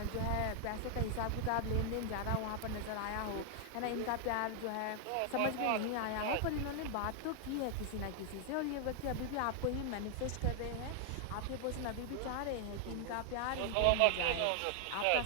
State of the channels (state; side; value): different; both; correlation 0.00